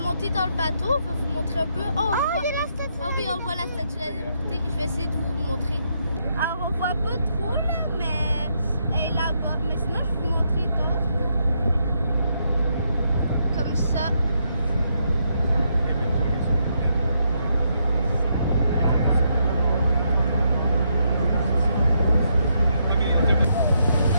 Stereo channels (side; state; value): both; inverted; correlation -0.78